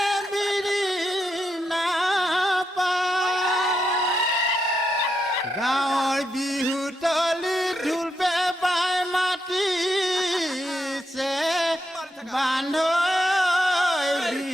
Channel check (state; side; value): normal; both; correlation 0.82